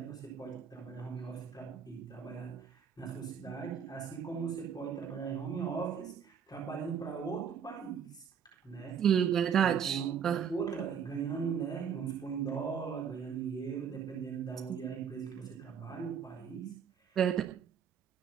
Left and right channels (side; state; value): left; quieter; 7.5 dB